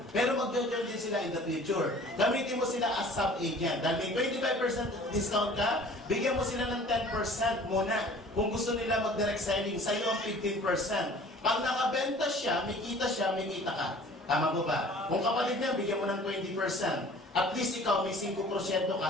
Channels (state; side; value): normal; both; correlation 0.48